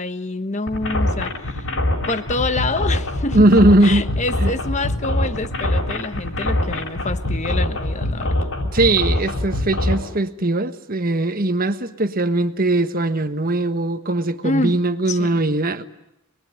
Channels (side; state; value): both; normal; correlation 0.55